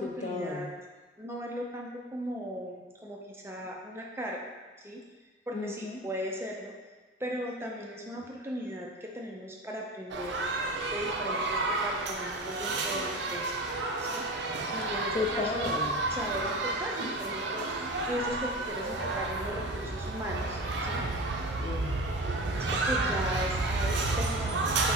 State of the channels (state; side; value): normal; both; correlation 0.31